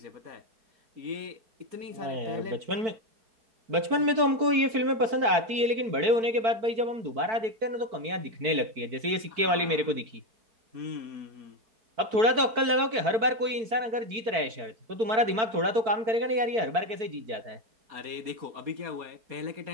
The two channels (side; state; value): left; late; 4.5 ms